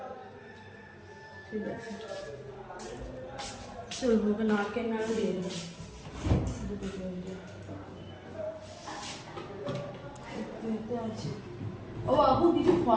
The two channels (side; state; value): both; identical; correlation 1.00